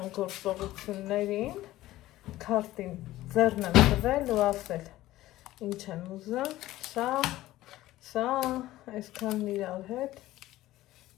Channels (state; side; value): quieter; right; 15.8 dB